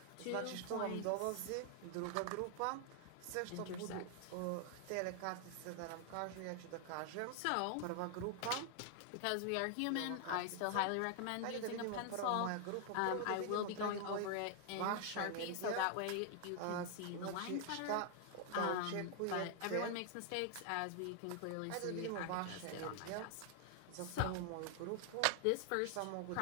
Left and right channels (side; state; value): both; different; correlation 0.00